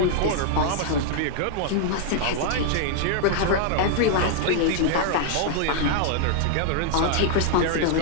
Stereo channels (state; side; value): different; both; correlation 0.00